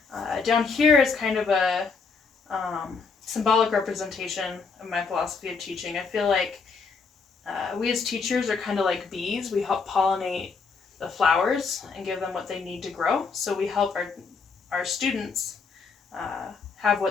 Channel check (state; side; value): quieter; right; 4.9 dB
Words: Down here is kind of a symbolic representation of my philosophy of teaching. I feel like we as teachers are kind of like bees. We help pollinate the flowers and give them what they need to grow. So we help our students have